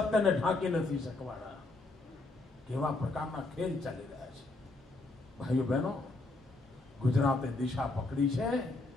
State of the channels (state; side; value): quieter; right; 3.1 dB